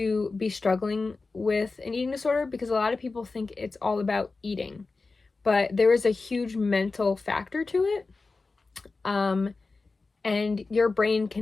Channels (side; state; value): right; quieter; 3.9 dB